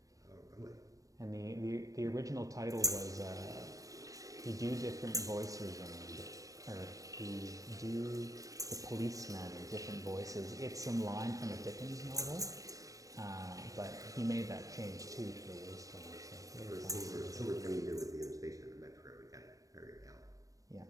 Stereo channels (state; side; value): late; left; 0.16 ms